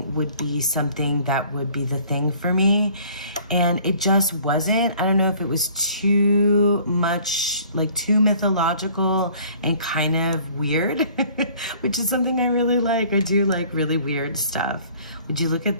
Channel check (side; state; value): both; inverted; correlation -0.54